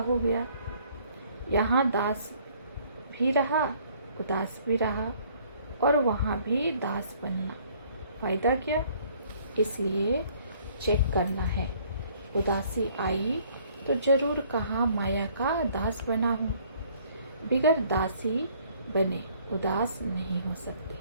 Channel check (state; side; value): inverted; both; correlation -0.60